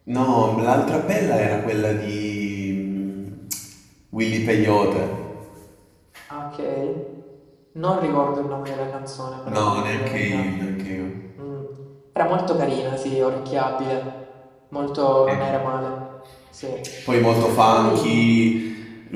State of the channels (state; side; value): identical; both; correlation 1.00